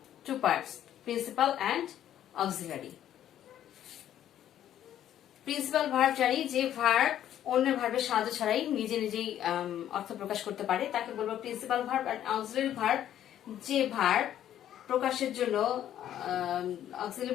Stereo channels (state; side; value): quieter; right; 11.2 dB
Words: 2 parts: principal and auxiliary. Principal verb জানি যে ভার্ব অন্যের ভার্বের সাহায্য ছাড়াই নিজে নিজেই অর্থ প্রকাশ করতে পারে, তাকে বলবো প্রিন্সিপাল ভার্ব। আর অক্সিলারি ভার্ব যে ভার্ব প্রকাশের জন্য auxiliary